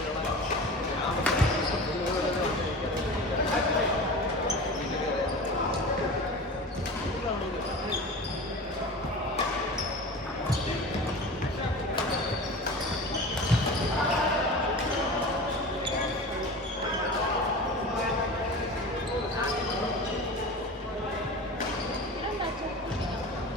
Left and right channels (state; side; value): normal; both; correlation 0.33